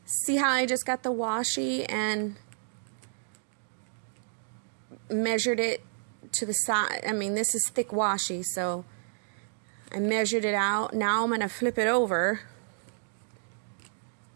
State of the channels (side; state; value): left; silent; digital silence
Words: See how I just got the washi and measured it to the side. I mean, this is thick washi, so I measured it out. Now I'm going to flip it over